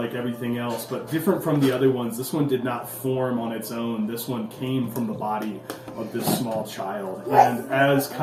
everything else, but different from the other ones. This one did not form on its own. This one came from the body of this small child. And as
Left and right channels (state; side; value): identical; both; correlation 1.00